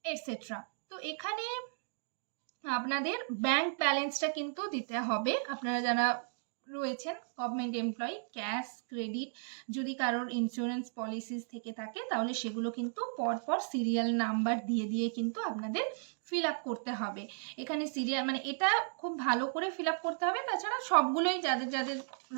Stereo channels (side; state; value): left; silent; digital silence